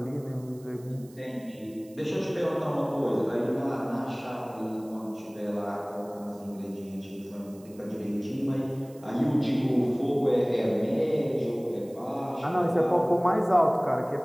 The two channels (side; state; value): right; noise; hiss, 26 dB below the sound